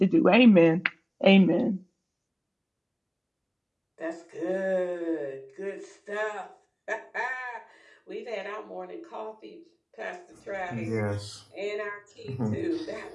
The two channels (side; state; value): both; identical; correlation 1.00